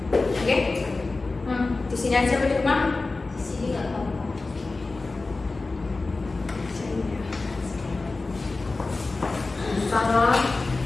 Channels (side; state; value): right; quieter; 3.5 dB